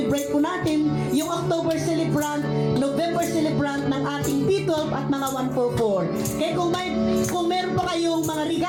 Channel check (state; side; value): identical; both; correlation 1.00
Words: po natin yung October celebrant, November celebrant ng ating P12 at mga 144. Kaya kung meron pa kayong mga